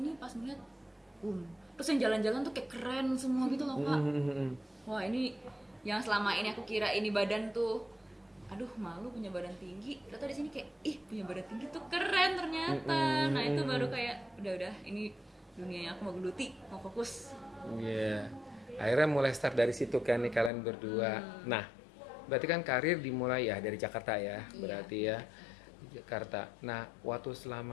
pas ngeliat terus yang jalan-jalan tuh kayak keren semua gitu loh Kak. Wah ini yang selama ini aku kira ini badan tuh aduh malu punya badan tinggi, ternyata di sini kayak ih punya badan tinggi tuh keren ternyata. Nah itu baru kayak udah ini dunia yang aku mau geluti, mau fokus. Iya. Akhirnya mulai start dari situ kan nih kalian berdua. Nah, berarti kan karir dimulai ya dari Jakarta ya, berarti ya di Jakarta. Nah, waktu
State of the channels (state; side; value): drops out; right; at 20.5 s